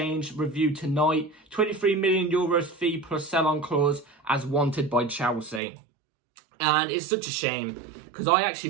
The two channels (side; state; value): left; drops out; at 5.6 s